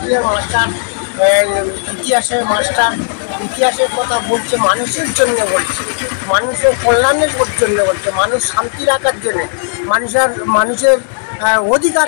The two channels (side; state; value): right; silent; 67 dB below the other